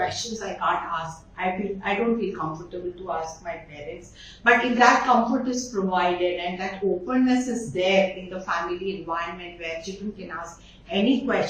I can't ask. I don't feel comfortable to ask my parents. But if that comfort is provided and that openness is there in the family environment where children can ask any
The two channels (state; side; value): identical; both; correlation 1.00